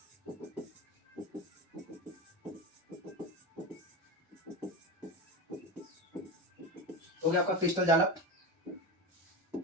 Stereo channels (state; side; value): normal; both; correlation 0.22